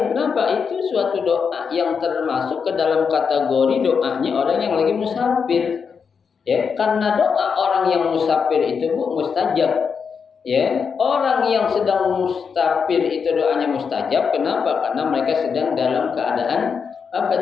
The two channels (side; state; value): right; quieter; 6.1 dB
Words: Kenapa? Itu suatu doa yang termasuk ke dalam kategori doanya orang yang lagi musafir. Ya, karena doa orang yang musafir itu, Bu, mustajab. Ya, orang yang sedang musafir itu doanya mustajab. Kenapa? Karena mereka sedang dalam keadaan apa